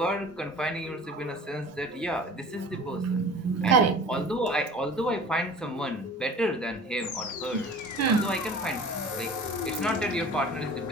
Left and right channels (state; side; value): normal; both; correlation 0.41